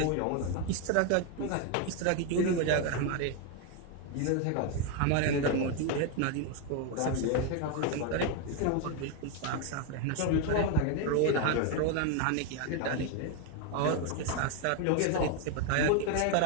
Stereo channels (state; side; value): different; both; correlation 0.01